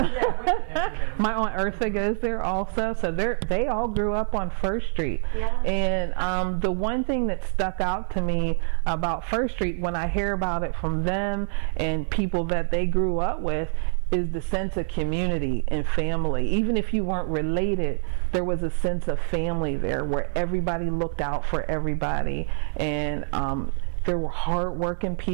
my Aunt Eartha goes there also. So they all grew up on First Street. Yeah. And the one thing that stuck out to me about First Street when I hear about it from them and people that they grew up with is the sense of community and family. Even if you weren't related, there was a sense of family there where everybody looked out for everybody, and there were hard-working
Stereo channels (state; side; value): silent; left; digital silence